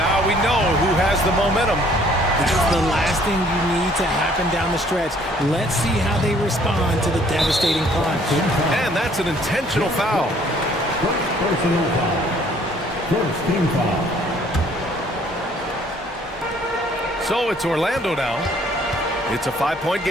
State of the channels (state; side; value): normal; both; correlation 0.60